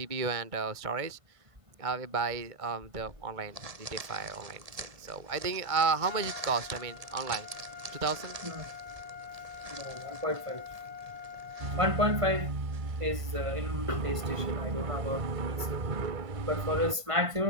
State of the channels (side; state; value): left; late; 1.5 ms